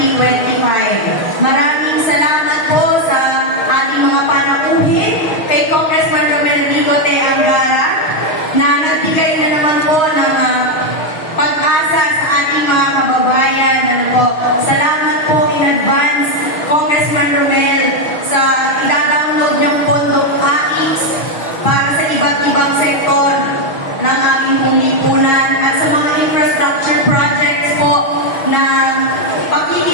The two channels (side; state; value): right; late; 6.4 ms